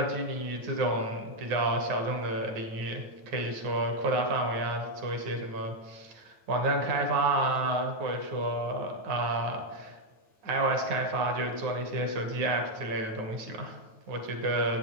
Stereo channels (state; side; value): late; left; 9.2 ms